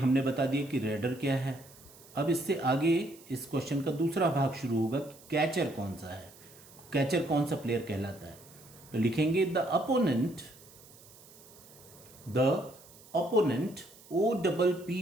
बता दिया कि रेडर क्या है। अब इससे आगे इस क्वेश्चन का दूसरा भाग शुरू होगा कि कैचर कौन सा है, कैचर कौन सा प्लेयर कहलाता है। तो लिखेंगे the opponent The opponent,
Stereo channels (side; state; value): right; noise; hiss, 22 dB below the sound